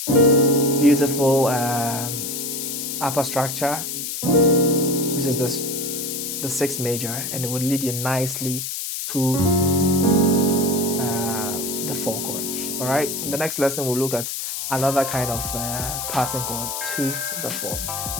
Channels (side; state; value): left; noise; hiss, 4 dB below the sound